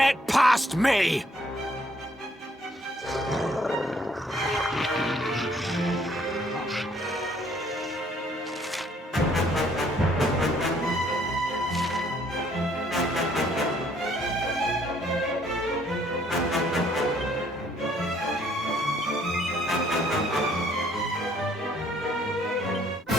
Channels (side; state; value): both; normal; correlation 0.64